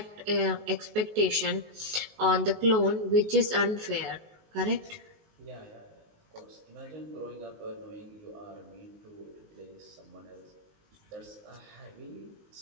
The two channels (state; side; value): late; left; 19 ms